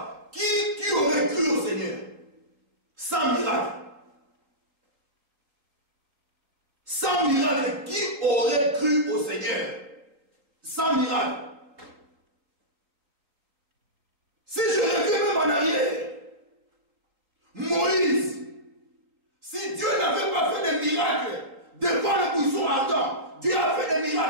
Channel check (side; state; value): left; late; 3.8 ms